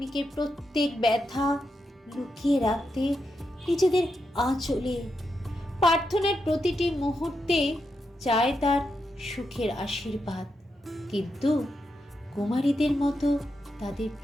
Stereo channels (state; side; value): normal; both; correlation 0.85